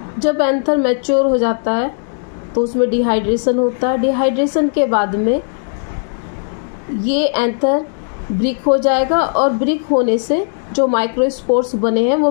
जब एंथर मैच्योर हो जाता है तो उसमें डिहाइड्रेशन होता है। डिहाइड्रेशन के बाद में ये एंथर ब्रिक हो जाएगा, और ब्रिक होने से जो माइक्रोस्पोर्स बने हैं वो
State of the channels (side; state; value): right; silent; digital silence